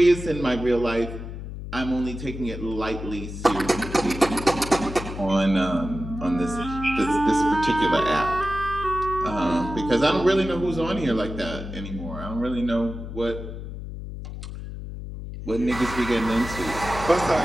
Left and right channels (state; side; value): noise; left; hum, 9 dB below the sound